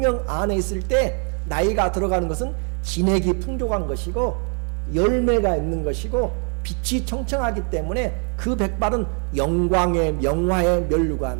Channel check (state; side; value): quieter; left; 39.4 dB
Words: 안에 있을 때 나이가 들어가는 것은 진액이 풍족한 것이고 열매가 있는 것이고 빛이 청청하기 때문에 그 백발은 영광의, 영화의